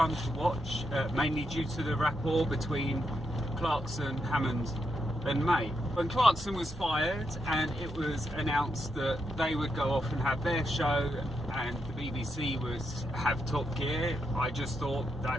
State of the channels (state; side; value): normal; both; correlation 0.82